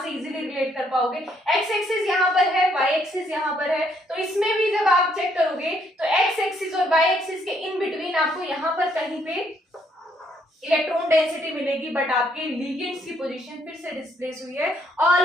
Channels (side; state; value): both; normal; correlation 0.70